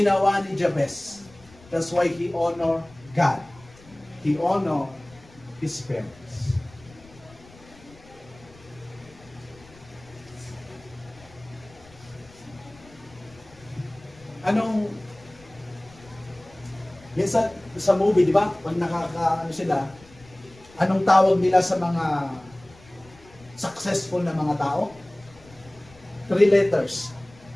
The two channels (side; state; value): left; noise; rumble, 24 dB below the sound